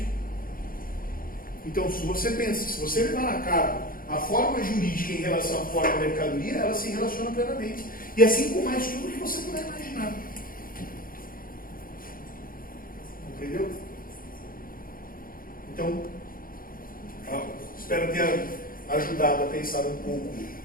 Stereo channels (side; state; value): right; late; 0.41 ms